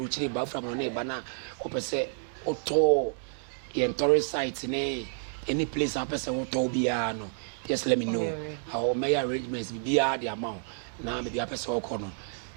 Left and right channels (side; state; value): left; silent; digital silence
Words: ba fra no ba na opese oto ye tourist site ne any place opese oto bia no. Just let me know how my arrangements bia the amount. Na me bia opese okono.